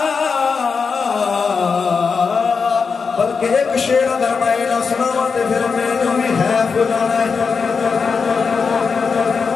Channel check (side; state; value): right; quieter; 5.3 dB